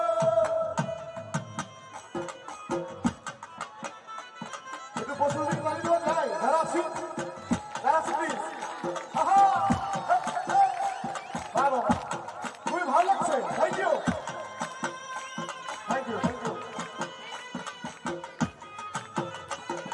একটু বসে গাড়ি দেওয়া যায় যারা আছি প্লিজ আহা বাবা খুবই ভালো লাগছে thank you thank you thank you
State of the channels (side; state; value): both; identical; correlation 1.00